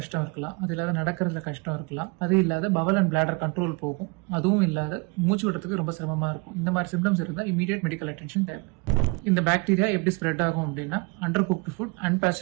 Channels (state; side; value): quieter; left; 28.9 dB